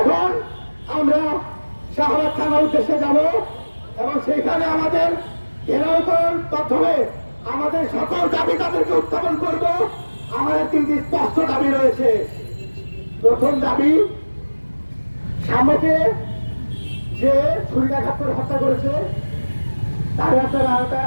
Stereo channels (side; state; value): both; inverted; correlation -1.00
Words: আমরা শাহবাগ থানার উদ্দেশ্যে যাব এবং সেখানে আমাদের ঘেরাও করার মাধ্যমে আমাদের সকল দাবি তাদেরকে উত্থাপন করব। আমাদের 3টি স্পষ্ট দাবি রয়েছে। প্রথম দাবি, সাম্যকে যে ছুরিকাঘাত করে হত্যা করেছে তার আপনারা